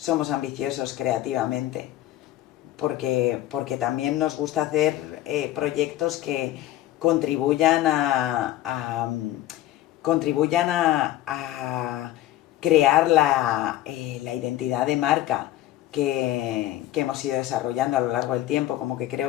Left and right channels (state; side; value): quieter; right; 14.3 dB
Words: ambiciosos creativamente, porque también nos gusta hacer proyectos que contribuyan a crear la identidad de marca que hemos ido desarrollando a lo largo del tiempo. Como que